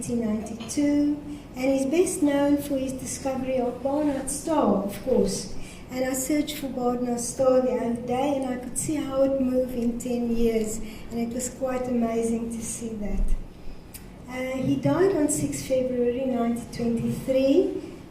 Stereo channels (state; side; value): identical; both; correlation 1.00